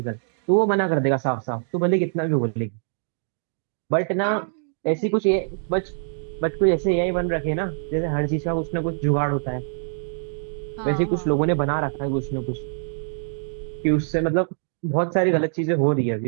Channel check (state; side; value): silent; left; digital silence